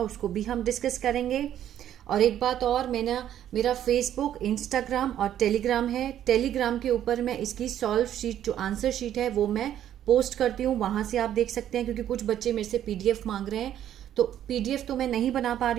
उसको भी हम डिस्कस करेंगे। और एक बात और, मेरा फेसबुक, इंस्टाग्राम और टेलीग्राम है। टेलीग्राम के ऊपर मैं इसकी सॉल्व शीट, जो आंसर शीट है, वो मैं पोस्ट करती हूँ। वहाँ से आप देख सकते हैं, क्योंकि कुछ बच्चे मेरे से पीडीएफ मांग रहे हैं, तो पीडीएफ तो मैं नहीं बना पा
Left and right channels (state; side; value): quieter; left; 11.0 dB